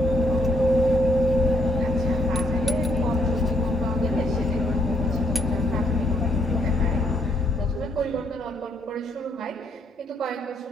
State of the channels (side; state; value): both; normal; correlation 0.71